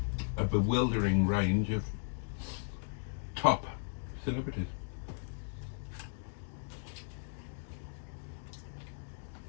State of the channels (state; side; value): silent; right; digital silence